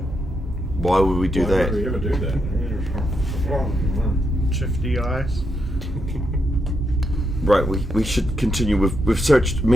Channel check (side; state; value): both; normal; correlation 0.81